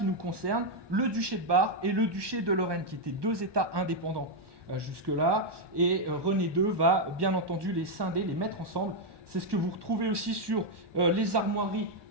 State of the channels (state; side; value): late; left; 1.2 ms